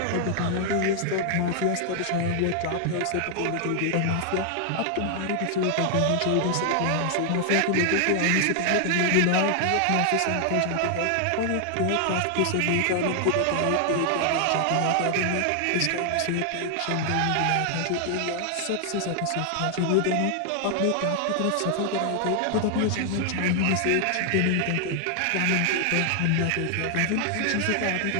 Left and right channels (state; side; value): different; both; correlation 0.00